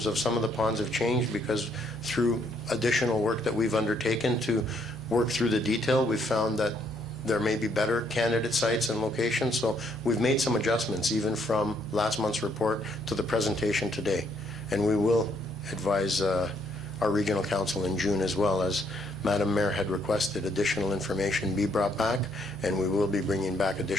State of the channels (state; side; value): normal; both; correlation 0.70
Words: of some of the ponds have changed because through additional work that we've undertaken to work through the detail, we've found that there may be better candidate sites and locations. So we've made some adjustments even from last month's report to the presentation today. And we will advise our regional council in June as well, as Madam Mayor had requested additional information be brought back, and we will be bringing back